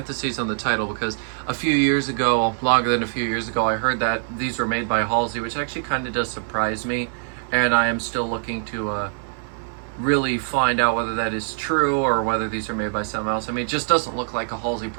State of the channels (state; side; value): silent; left; digital silence